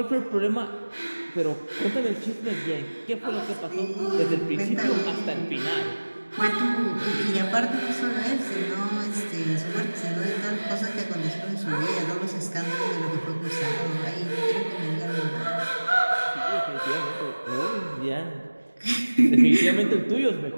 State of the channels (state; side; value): inverted; both; correlation -1.00